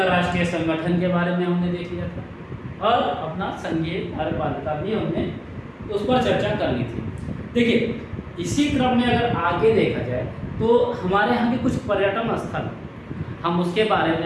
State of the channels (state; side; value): identical; both; correlation 1.00